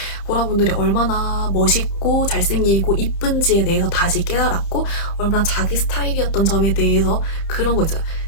보라분들이 얼마나 멋있고 잘생기고 이쁜지에 대해서 다시 깨달았고, 얼마나 자기 스타일이었던 점에 대해서 그런 거 있잖아요.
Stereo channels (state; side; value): late; right; 30 ms